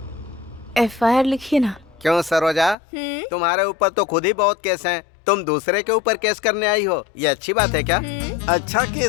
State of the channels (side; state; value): right; drops out; at 2.8 s